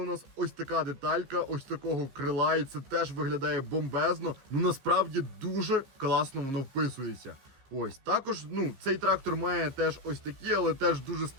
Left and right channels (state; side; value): late; left; 15 ms